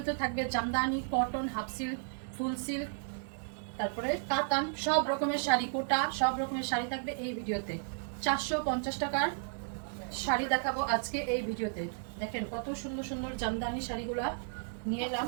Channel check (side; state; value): left; silent; digital silence